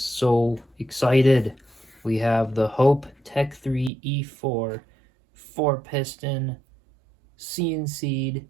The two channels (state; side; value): drops out; left; at 3.9 s